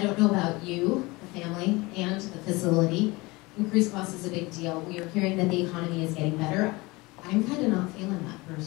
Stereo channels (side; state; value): right; quieter; 23.2 dB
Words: don't know about you, the family, and the facility. Increased cost is a big deal. We are hearing that the economy is getting better. I'm kind of not feeling that